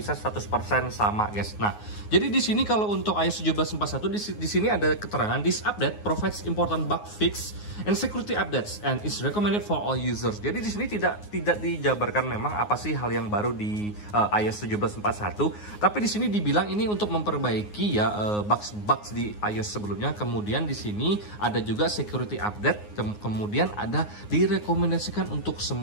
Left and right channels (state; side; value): late; right; 9.6 ms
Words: 100% sama guys. Nah, jadi di sini kalau untuk iOS 17.41 di sini ada keterangan this update provides important bug fix and security updates and is recommended for all users. Jadi di sini tidak dijabarkan memang apa sih hal yang baru di iOS 17.41, tapi di sini dibilang ini untuk memperbaiki ya bugs di iOS sebelumnya. Kemudian di sini ada juga security update, kemudian ada direkomendasikan untuk